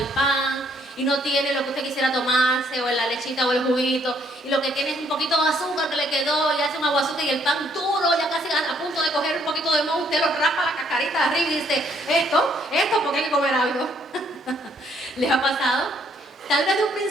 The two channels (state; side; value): normal; both; correlation 0.68